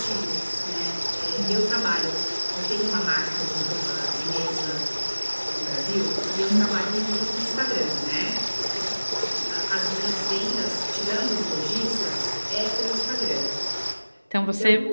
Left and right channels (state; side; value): inverted; both; correlation -1.00